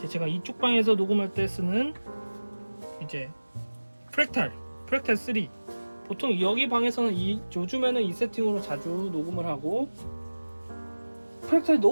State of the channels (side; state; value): both; inverted; correlation -1.00